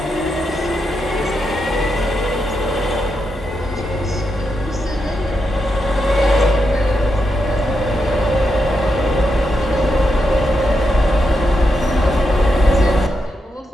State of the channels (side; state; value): both; normal; correlation 0.84